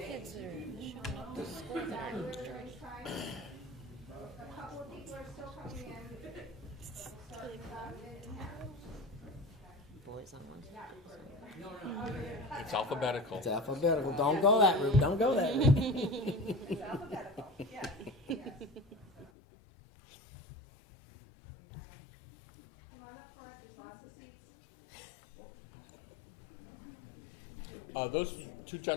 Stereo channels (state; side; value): drops out; right; at 19.3 s